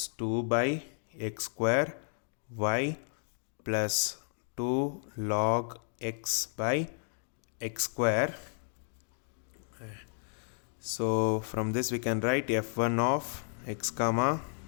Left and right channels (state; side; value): silent; right; 56 dB below the other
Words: 2 by x square y plus 2 log x by x square. So from this we can write f1 of x comma